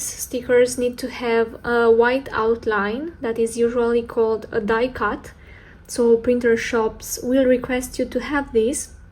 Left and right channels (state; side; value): identical; both; correlation 1.00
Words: stickers need to have a white outline that is usually called a die cut. So printer shops will request you to have this.